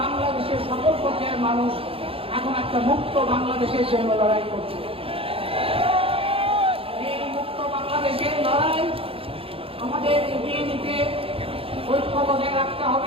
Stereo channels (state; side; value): late; left; 0.27 ms